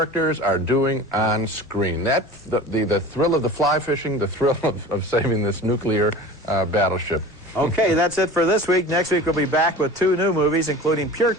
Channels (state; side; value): normal; both; correlation 0.38